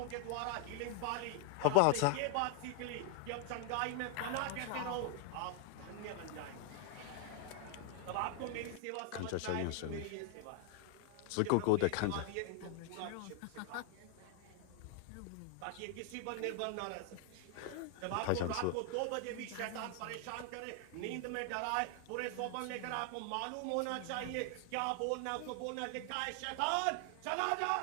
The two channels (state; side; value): different; both; correlation 0.00